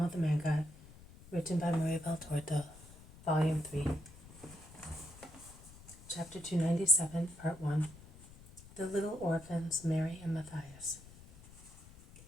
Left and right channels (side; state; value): left; noise; rumble, 19 dB below the sound